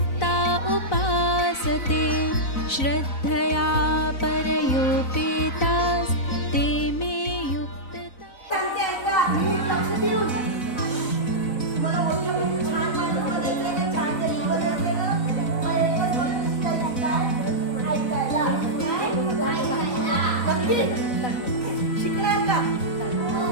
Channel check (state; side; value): late; right; 4.0 ms